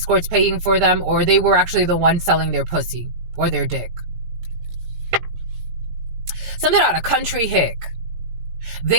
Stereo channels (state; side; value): late; left; 18 ms